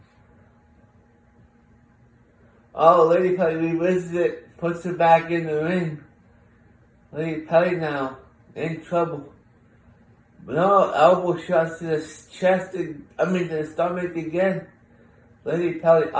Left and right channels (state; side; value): identical; both; correlation 1.00